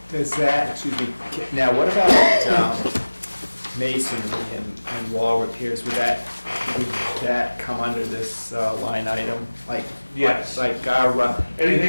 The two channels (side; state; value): both; inverted; correlation -1.00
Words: Does that, excuse me, now what about masonry and wall repairs? Would that come under this line item? Yes. Like our,